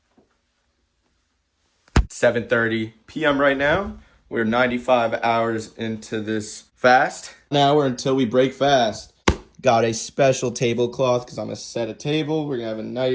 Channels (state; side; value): identical; both; correlation 1.00